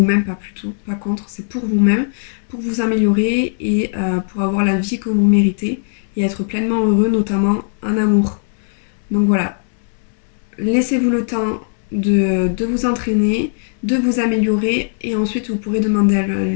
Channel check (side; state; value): right; silent; digital silence